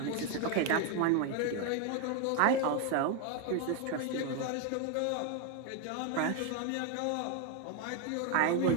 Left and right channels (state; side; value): different; both; correlation 0.01